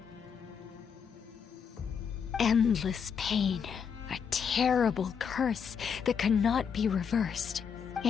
Endless pain, a terrible curse that cannot be reversed,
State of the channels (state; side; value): quieter; right; 6.9 dB